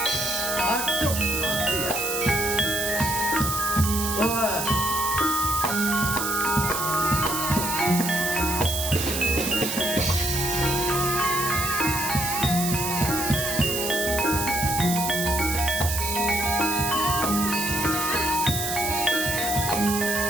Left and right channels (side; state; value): right; noise; hiss, 3 dB below the sound